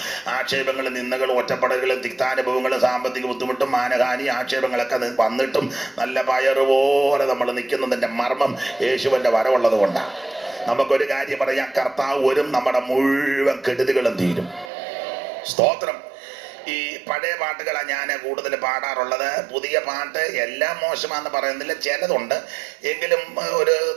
ആക്ഷേപങ്ങളും നിന്ദകളും ഒറ്റപ്പെടലുകളും തിക്താനുഭവങ്ങളും സാമ്പത്തിക ബുദ്ധിമുട്ടും മാനഹാനി ആക്ഷേപങ്ങളൊക്കെ വന്നിട്ടും നല്ല പയറുപോലെ നമ്മൾ നിൽക്കുന്നതിൻ്റെ മർമ്മം യേശുവിൻ്റെ വരവുള്ളത് കൊണ്ടാണ്. നമുക്കൊരു കാര്യം പറയാം, കർത്താവ് വരും, നമ്മുടെ മുഴുവൻ കെടുതികളും തീരും. സ്തോത്രം. ഈ പഴയ പാട്ടുകളാണ് ഞാൻ കൂടുതൽ പാടാറുള്ളത്. പുതിയ പാട്ട് എല്ലാം മോശമാണെന്ന് പറയുന്നില്ല, ചിലതുണ്ട്, എങ്കിലും ഒരു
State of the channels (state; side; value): drops out; left; at 14.7 s